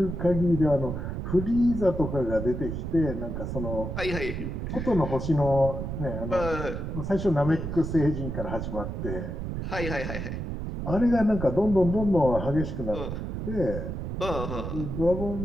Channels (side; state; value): right; noise; rumble, 4 dB below the sound